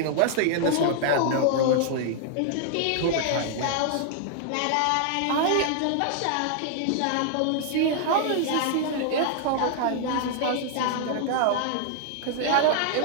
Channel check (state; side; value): different; both; correlation -0.01